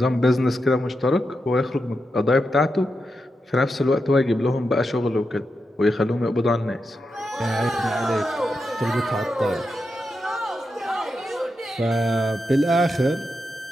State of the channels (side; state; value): both; normal; correlation 0.87